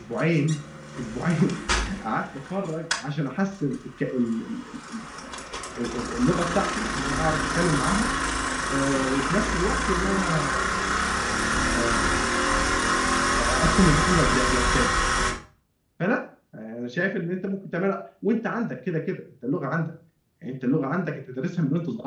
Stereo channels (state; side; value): identical; both; correlation 1.00